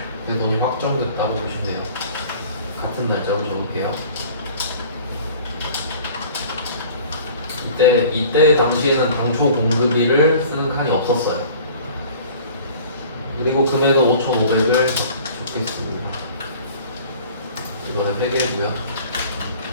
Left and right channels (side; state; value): both; inverted; correlation -0.47